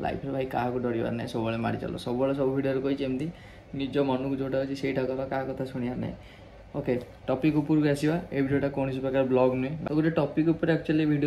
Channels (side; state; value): both; identical; correlation 1.00